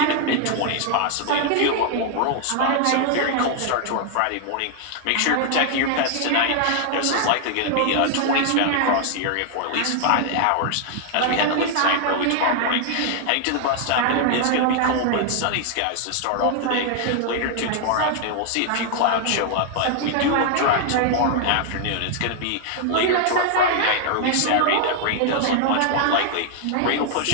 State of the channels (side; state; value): both; different; correlation 0.00